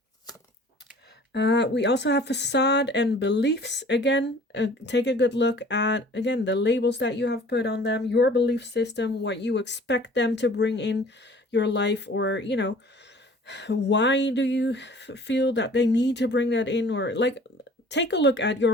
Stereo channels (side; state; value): both; normal; correlation 0.49